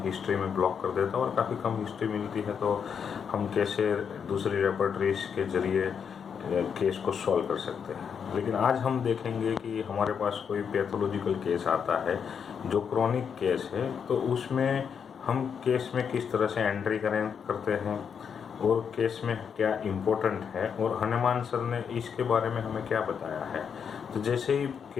हिस्ट्री में ब्लॉक कर देता और काफ़ी कम हिस्ट्री मिलती है, तो हम कैसे दूसरी रेपर्टरीज के जरिए केस को सॉल्व कर सकते हैं। लेकिन आज हम देखेंगे कि हमारे पास कोई पैथोलॉजिकल केस आता है जो क्रॉनिक केस है, तो उसमें हम केस में किस तरह से एंट्री करते हैं और केस में क्या इम्पोर्टेंट है, और हनुमान सर ने इसके बारे में हमें क्या बताया है। तो जैसे ही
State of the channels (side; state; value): right; quieter; 7.0 dB